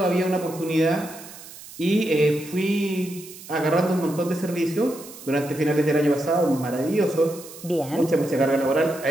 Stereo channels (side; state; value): right; noise; hiss, 16 dB below the sound